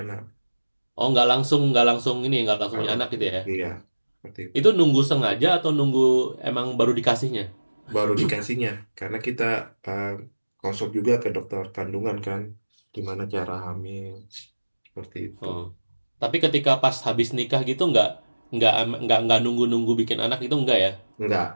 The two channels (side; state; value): both; inverted; correlation -1.00